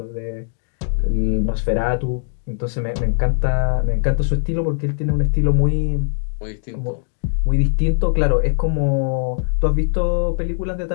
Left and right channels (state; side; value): silent; right; digital silence